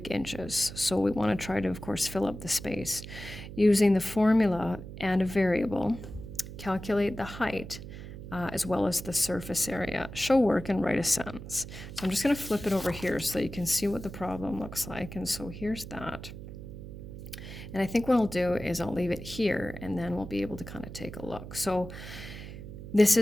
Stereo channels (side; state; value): right; noise; hum, 11 dB below the sound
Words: inches. So we want to try to, of course, fill up the space. Using the formula and a variable, calculate the height as well as the surface area. Show work and write a sentence. So I'm just going to flip it over here so that you can see what the problem looks like. And so here's that. And I think what I'll do is I'll leave it here and then we'll be able to kind of take a look. So this